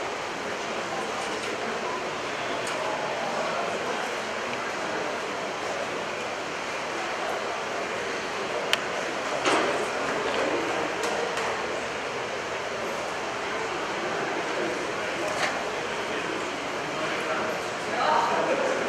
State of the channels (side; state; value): both; identical; correlation 1.00